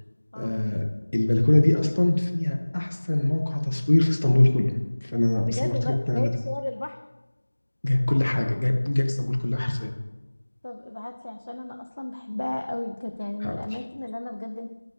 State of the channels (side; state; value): both; inverted; correlation -1.00